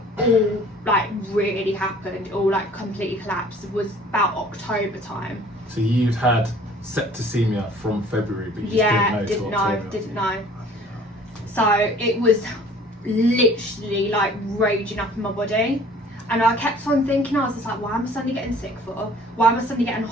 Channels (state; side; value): normal; both; correlation 0.52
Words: all like really happened, all like completely collapsed, was about October time. So you'd had septicemia from February, but you didn't know. So it was literally like raging up in my body, and I kept on thinking, I was just like, why am I suddenly getting sick for? Why am I suddenly getting